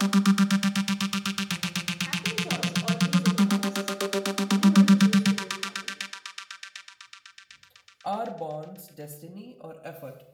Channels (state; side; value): identical; both; correlation 1.00